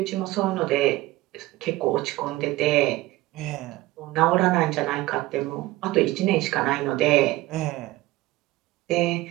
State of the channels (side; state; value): left; quieter; 18.3 dB